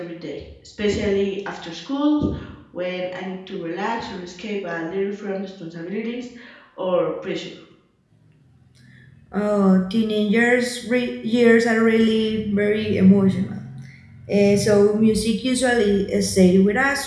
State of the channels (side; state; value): both; identical; correlation 1.00